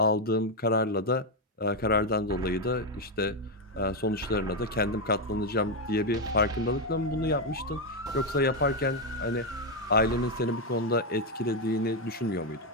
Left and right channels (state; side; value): normal; both; correlation 0.05